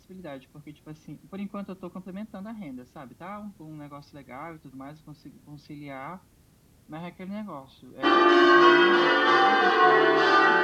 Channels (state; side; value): identical; both; correlation 1.00